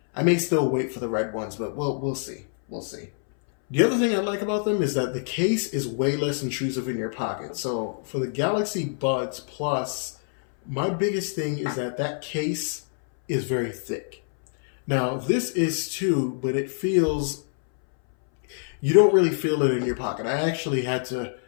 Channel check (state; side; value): silent; right; 61 dB below the other